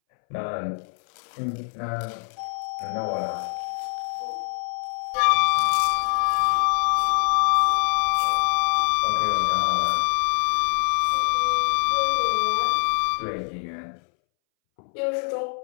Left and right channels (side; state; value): right; silent; 63 dB below the other